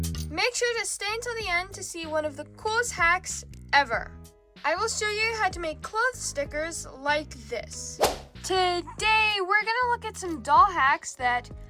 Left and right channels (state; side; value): identical; both; correlation 1.00